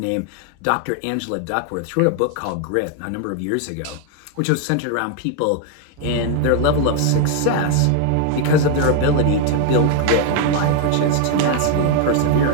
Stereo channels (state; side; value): different; both; correlation 0.01